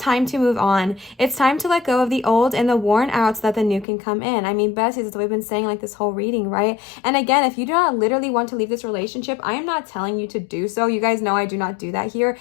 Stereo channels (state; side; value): drops out; right; at 3.9 s